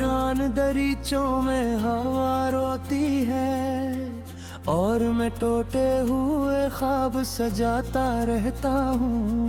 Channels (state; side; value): identical; both; correlation 1.00